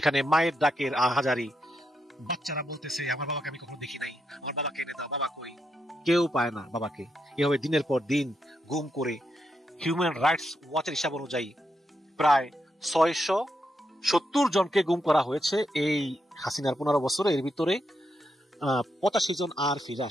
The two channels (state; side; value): normal; both; correlation 0.82